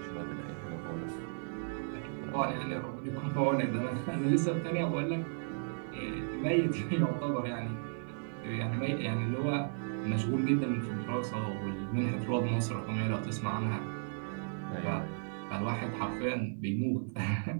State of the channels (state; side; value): silent; left; 55 dB below the other